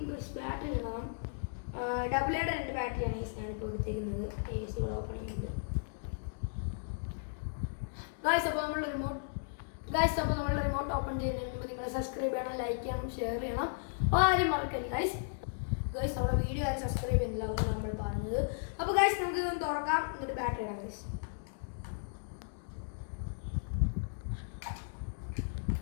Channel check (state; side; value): silent; right; digital silence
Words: ബാറ്ററി ഇടണം. AA രണ്ട് ബാറ്ററിയാണ് ഗൈസ് ഞാനിപ്പോൾ എടുത്തേക്കുന്നത്. AC ഓപ്പൺ ചെയ്യുന്നുണ്ട് ഗൈസ്. അപ്പോൾ നമ്മൾ റിമോട്ട് ഓപ്പൺ ചെയ്യുന്നതിന് മുമ്പ് നിങ്ങൾ സബ്സ്ക്രൈബ് ചെയ്യണം, ലൈക്ക് ചെയ്യണം, ഷെയർ ചെയ്യണം, ആരും മറക്കരുത് ഗൈസ്. നമ്മുടെ വീഡിയോ ആരും സബ്സ്ക്രൈബ് ചെയ്യുന്നില്ല, അതാണ് നമ്മൾ പറഞ്ഞത്. അപ്പോൾ ഗൈസ് നമുക്ക് ഇതൊന്ന് തുറക്കാം, എന്നിട്ട് ബാറ്ററി ഇടാം ഗൈസ്.